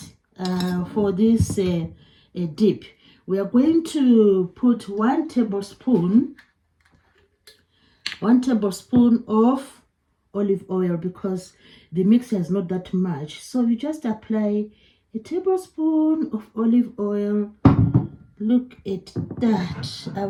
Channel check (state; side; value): identical; both; correlation 1.00